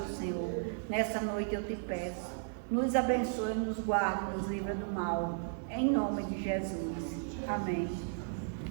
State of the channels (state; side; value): silent; left; digital silence